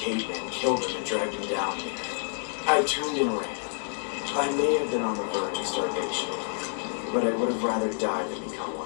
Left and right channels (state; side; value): silent; right; digital silence